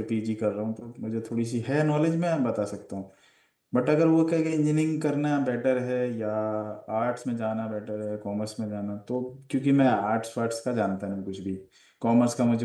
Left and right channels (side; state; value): both; identical; correlation 1.00